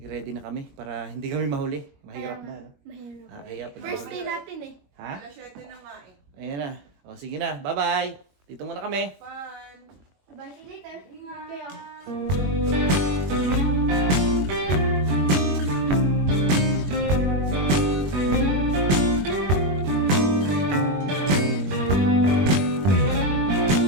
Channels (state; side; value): late; left; 21 ms